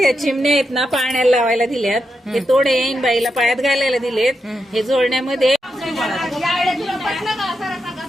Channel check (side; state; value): both; normal; correlation 0.85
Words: चिमण्या आहेत ना पाण्याला लावायला दिल्यात. हे तोडे येईन बाईला पायात घालायला दिलेत. हे जोडण्यामध्ये